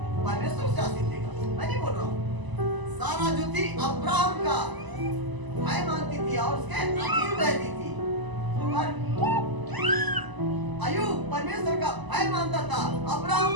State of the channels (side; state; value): left; late; 1.0 ms